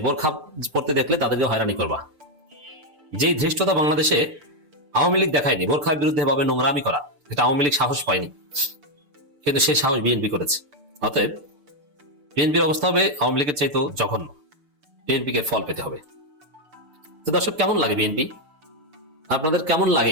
বোরখা পড়তে দেখলে তাদেরকে হয়রানি করবা। যেই ধৃষ্টতা বাংলাদেশে আওয়ামী লীগ দেখায়নি বোরখার বিরুদ্ধে ভাবে নোংরামি করা, এটা আওয়ামী লীগ সাহস পায়নি, কিন্তু সেই সাহস বিএনপি করেছে। অতএব বিএনপির অবস্থা হবে আওয়ামী লীগের চাইতেও জঘন্য। বিএনপিকে ফল পেতে হবে। তো দর্শক, কেমন লাগে বিএনপি?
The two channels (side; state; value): left; late; 6.8 ms